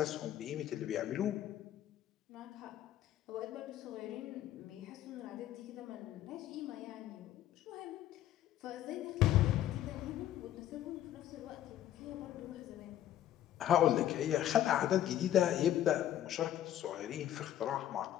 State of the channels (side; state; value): right; quieter; 12.1 dB